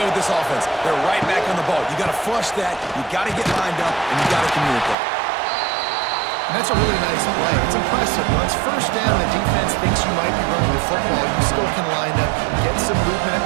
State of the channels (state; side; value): drops out; left; at 5.0 s